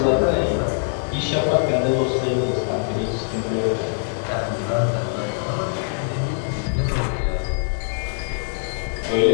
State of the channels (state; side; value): silent; right; digital silence